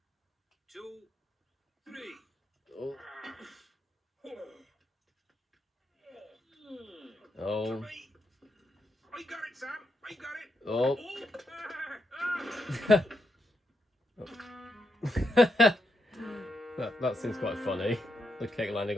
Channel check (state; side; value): normal; both; correlation 0.82